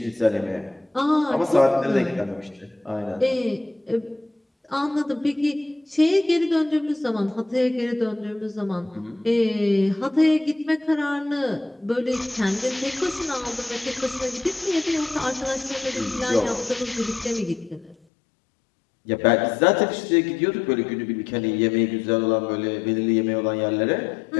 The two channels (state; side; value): drops out; right; at 17.9 s